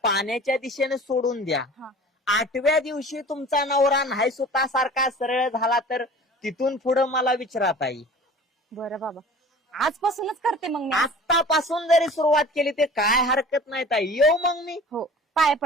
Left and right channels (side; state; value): both; normal; correlation 0.42